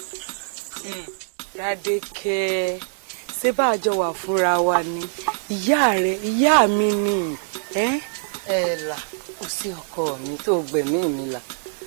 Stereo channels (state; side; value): silent; left; digital silence